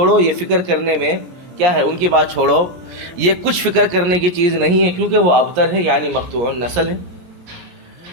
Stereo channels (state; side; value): late; left; 17 ms